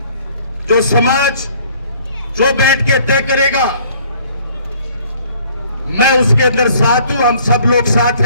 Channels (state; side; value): inverted; both; correlation -0.57